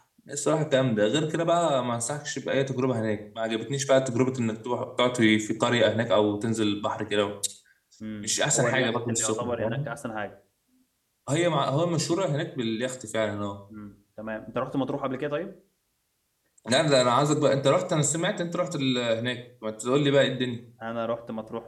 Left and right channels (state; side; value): identical; both; correlation 1.00